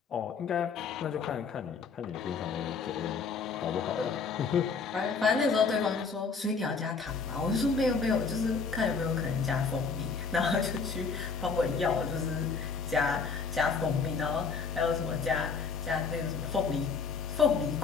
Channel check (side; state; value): right; quieter; 5.2 dB